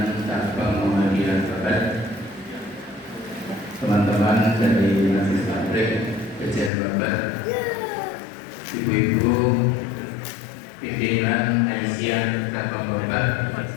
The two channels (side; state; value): right; drops out; at 6.7 s